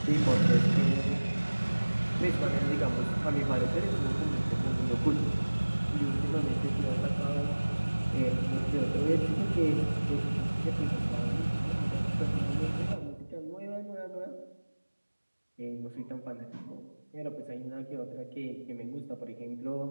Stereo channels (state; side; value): inverted; both; correlation -1.00